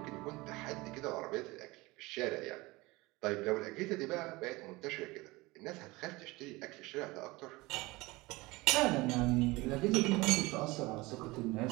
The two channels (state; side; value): quieter; left; 22.0 dB